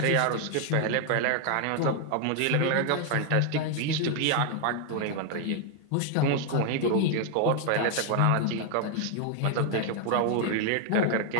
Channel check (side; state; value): both; different; correlation 0.00